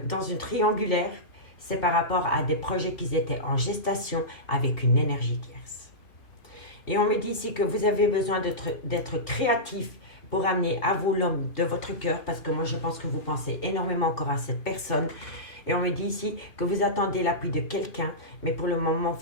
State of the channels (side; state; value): right; late; 2.5 ms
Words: une triangulaire, c'est par rapport à des projets qui étaient en gestation avec une énergie tierce. Et on me dit ici que vous avez besoin d'être créatif pour amener à vous l'homme de votre cœur, parce que moi je pense que vous pensez énormément encore à cette personne. Et on me dit ici que vous attendez l'appui de quelqu'un, mais pour le moment